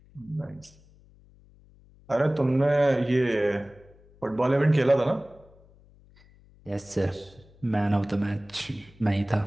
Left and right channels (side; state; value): left; noise; hum, 27 dB below the sound